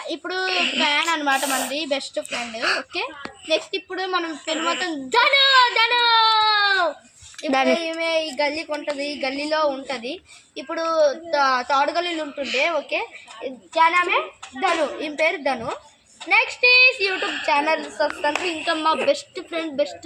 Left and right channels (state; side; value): identical; both; correlation 1.00